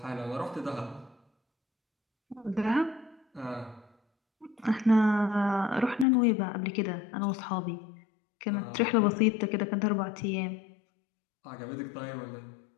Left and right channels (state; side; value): drops out; right; at 6.1 s